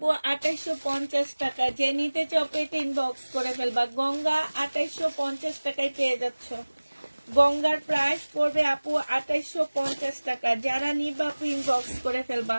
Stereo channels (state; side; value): inverted; both; correlation -1.00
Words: 2850 টাকা। যে নিতে চাও আপু এটা ইনবক্স করে ফেলবা। গঙ্গা 2850 টাকায় পেয়ে যাচ্ছ। গঙ্গার প্রাইস পড়বে আপু 2850 টাকা। যারা নিবা আপু ইনবক্স করে ফেলবা।